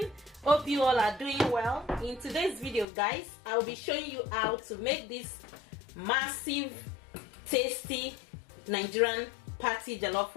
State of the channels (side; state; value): right; drops out; at 2.9 s